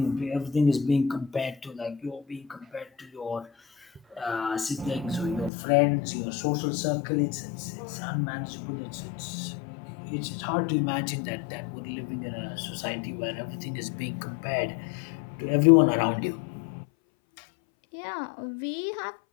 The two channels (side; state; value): right; drops out; at 5.5 s